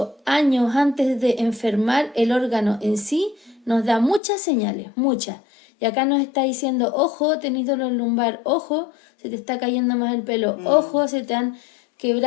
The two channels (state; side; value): drops out; right; at 4.2 s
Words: años antes de enfermar el órgano en sí, nos da muchas señales, muchas. Y acá nos está diciendo, ojo, tenés dolor lumbar, ojo, se te está cayendo más el pelo, ojo, se te han